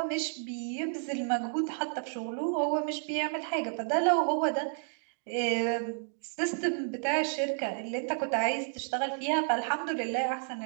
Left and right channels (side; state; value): left; silent; digital silence